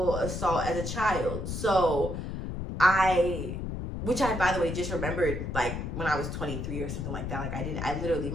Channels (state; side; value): noise; left; rumble, 4 dB below the sound